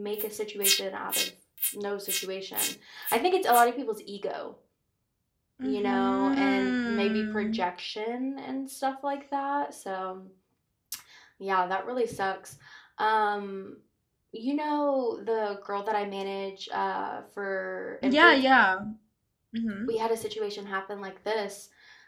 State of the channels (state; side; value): identical; both; correlation 1.00